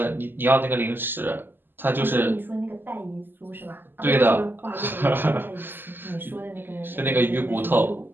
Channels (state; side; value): late; left; 0.095 ms